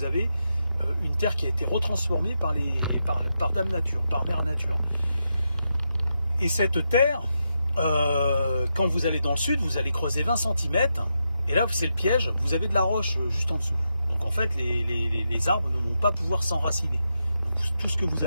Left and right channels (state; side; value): inverted; both; correlation -0.85